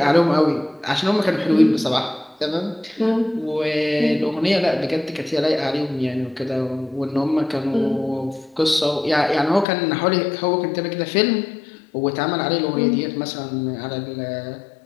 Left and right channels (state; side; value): drops out; right; at 9.7 s